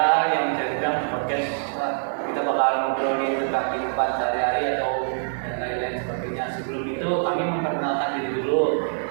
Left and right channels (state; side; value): silent; left; digital silence